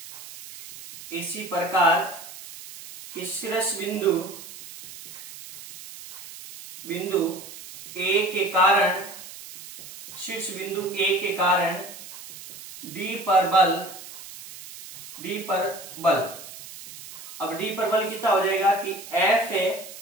प्रकार शीर्ष बिंदु A के कारण, शीर्ष बिंदु A के कारण D पर बल, अब D पर बल कितना हो जाएगा कि F है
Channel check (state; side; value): noise; right; hiss, 15 dB below the sound